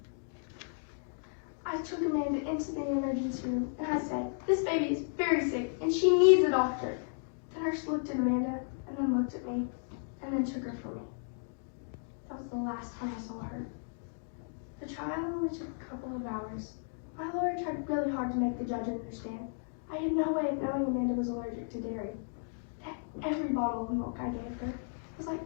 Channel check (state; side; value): silent; right; digital silence